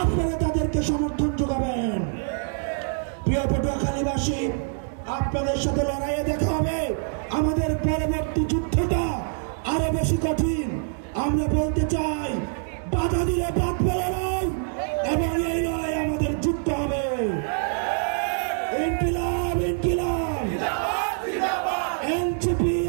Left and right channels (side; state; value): left; silent; 62 dB below the other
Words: আপনারা তাদেরকে সমর্থন যোগাবেন। প্রিয় পটুয়াখালীবাসী, আপনাদের সাথে লড়াইয়ে দেখা হবে। আমাদের পরবর্তী যুদ্ধটা আরো বেশি কঠিন। আমরা বলতে চাই, বাধা দিলে বাঁধবে লড়াই এবং এই লড়াই আমাদের যুদ্ধ হবে। ইনকিলাব ইনকিলাব, এনসিপি